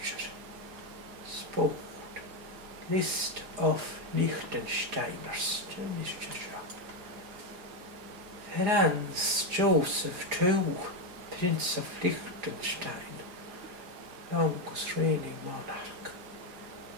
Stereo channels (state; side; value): late; left; 4.9 ms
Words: sport, list of Liechtensteiners, Franz Joseph II, Prince of Liechtenstein, longest reigning monarch.